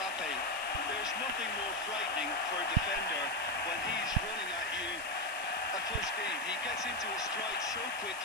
There's nothing more frightening for a defender when he's running at you at full speed. He gets into a stride so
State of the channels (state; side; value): noise; left; hiss, 13 dB below the sound